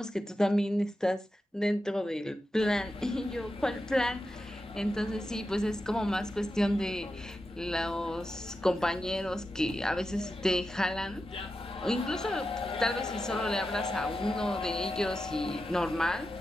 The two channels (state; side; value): normal; both; correlation 0.90